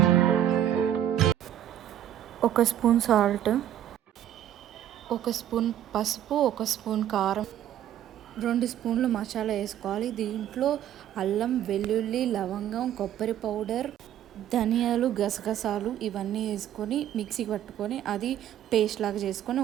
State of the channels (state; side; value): quieter; left; 11.2 dB